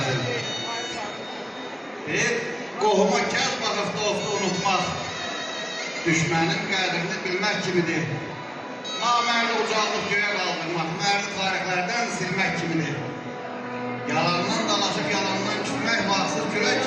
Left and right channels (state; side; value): identical; both; correlation 1.00